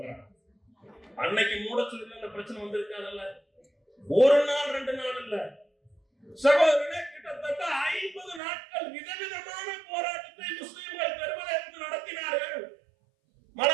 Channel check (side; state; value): left; drops out; at 8.4 s